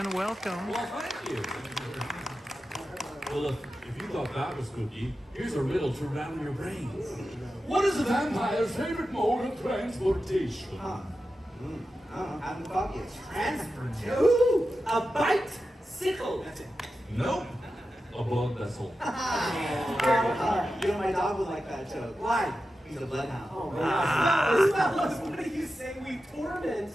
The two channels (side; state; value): both; normal; correlation 0.91